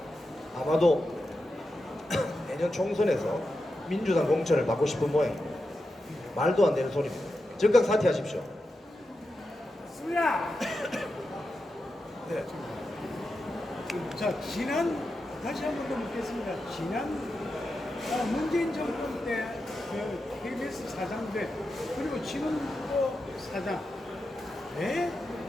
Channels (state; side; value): normal; both; correlation 0.89